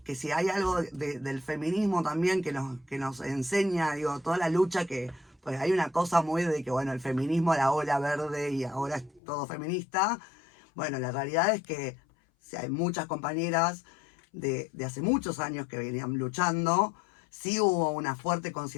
si hay algo del feminismo también que nos enseña, digo, toda la lucha que, pues hay una cosa muy de que, bueno, el feminismo, la ola verde y ahora es todo feminista. Bueno, la realidad es que si hay muchas compañeras de hace muchos años que venían luchando. Sí hubo una fuerte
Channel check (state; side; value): drops out; right; at 9.2 s